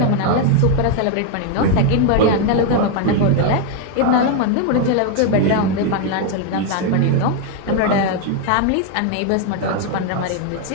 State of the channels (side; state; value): both; different; correlation 0.01